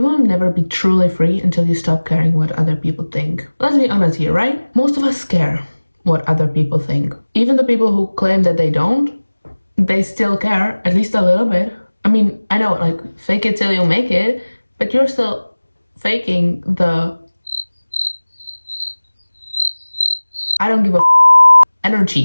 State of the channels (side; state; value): both; inverted; correlation -1.00